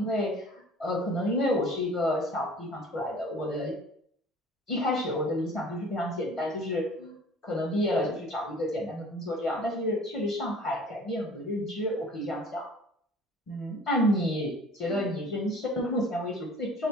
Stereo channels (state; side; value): normal; both; correlation 0.48